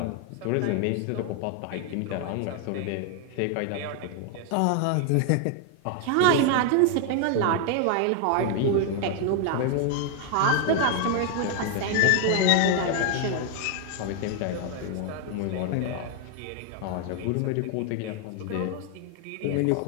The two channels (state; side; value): different; both; correlation 0.00